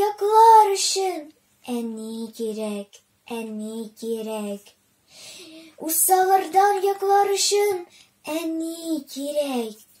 En iyi kirek, en iyi kirek. Usalardan yaklarışın, en iyi kirek.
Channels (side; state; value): both; identical; correlation 1.00